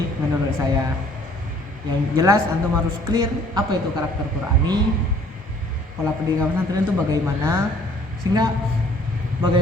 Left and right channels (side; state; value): both; normal; correlation 0.57